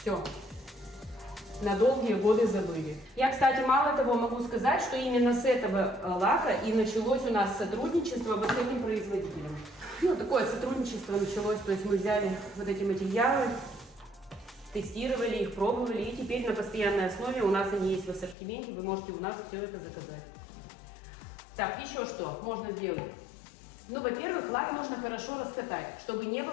На долгие годы забыли. Я, кстати, мало того могу сказать, что именно с этого лака и началось у нас сотрудничество вот с этим производителем. Ну, такое сотрудничество началось, то есть мы взяли вот эти материалы, тестировали их, пробовали, и теперь на постоянной основе у нас они есть в ассортименте, вы можете у нас все это заказать. Так, еще что можно сделать? Ну, во-первых, лак нужно хорошо раскатать, чтобы не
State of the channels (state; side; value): drops out; right; at 18.4 s